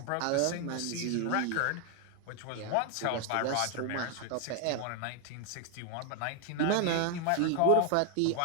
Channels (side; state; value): both; different; correlation 0.00